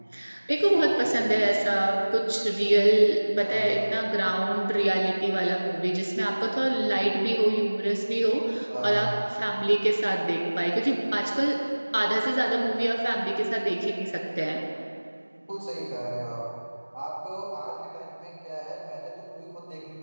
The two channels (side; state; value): both; inverted; correlation -1.00